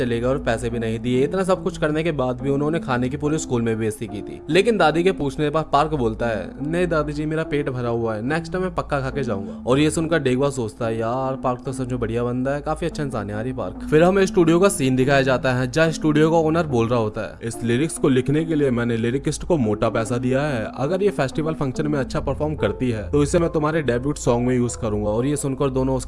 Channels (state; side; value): identical; both; correlation 1.00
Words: गए और पैसे भी नहीं दिए। इतना सब कुछ करने के बाद भी उन्होंने खाने की पूरे स्कूल में बेइज्जती की थी। लेकिन दादी के पूछने पर पार्क बोलता है, नहीं दादी जी मेरा पेट भरा हुआ है, नेक्स्ट टाइम मैं पक्का खा के जाऊंगा। और ये सुनकर डेगुआ सोचता है, यार पार्क तो सच में बढ़िया बंदा है, काफी अच्छा इंसान है यार ये पार्क। फिर हमें स्टूडियो का सीन दिखाया जाता है जहाँ स्टूडियो का ओनर बोल रहा होता है, इस लिरिक्स को लिखने के लिए मैंने लिरिकिस्ट को मोटा पैसा दिया है, अगर ये फेस्टिवल फंक्शन में अच्छा परफॉर्म करती है तो इसे मैं तुम्हारे डेब्यूट सॉन्ग में यूज करूंगा। और ये सुनकर दोनों